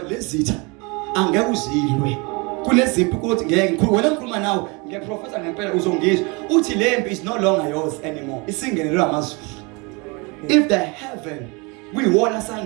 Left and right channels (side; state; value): left; quieter; 28.8 dB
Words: lezitha angeke uzilwe. Kunezimpi ukuthi ngeke ngikhuluma wena ngikhuluma nawe ngiyaprofesa ngempela uzongizwa uthi lempi is no longer yours anymore isingenelwe amazulu. If the heaven kuyiwona